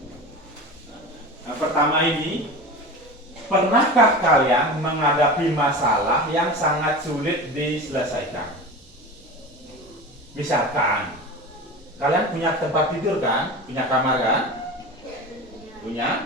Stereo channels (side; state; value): both; normal; correlation 0.30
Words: Nah, pertama ini, pernahkah kalian menghadapi masalah yang sangat sulit diselesaikan? Misalkan, kalian punya tempat tidur kan? Punya kamar kan?